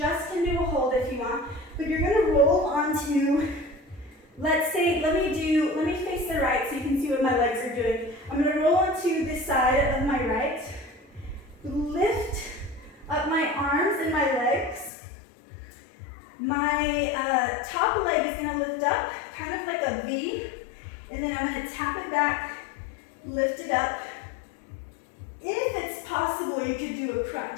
can do a hold if you want, but you're gonna roll onto, let's say, let me face the right so you can see what my legs are doing. I'm gonna roll onto this side of my right, lift up my arms and my legs. My top leg is gonna lift up, kind of like a V, and then I'm gonna tap it back, lift it up. If it's possible, you could do a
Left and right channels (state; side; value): drops out; right; at 14.9 s